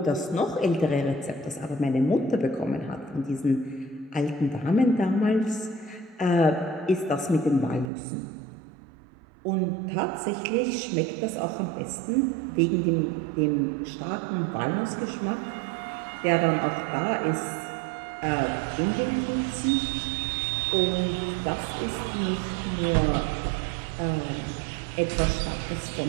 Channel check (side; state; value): left; drops out; at 7.9 s